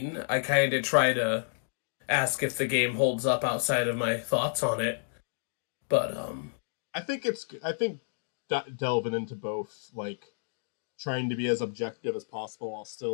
I kind of try to ask if the game holds up outside of my thoughts on it. But I think delving into both, like trying to be as objective as possible while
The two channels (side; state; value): right; silent; digital silence